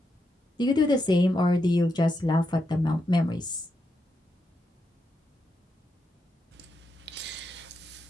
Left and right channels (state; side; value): normal; both; correlation 0.83